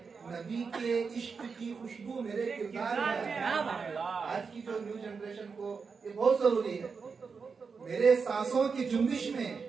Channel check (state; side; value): quieter; left; 5.3 dB